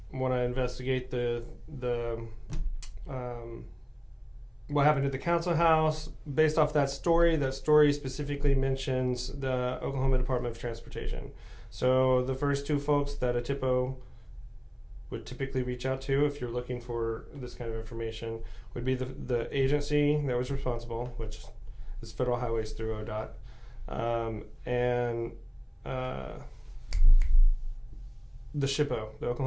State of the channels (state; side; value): identical; both; correlation 1.00